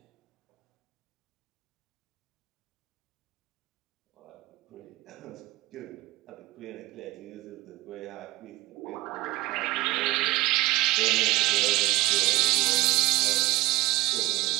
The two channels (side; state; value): left; quieter; 18.5 dB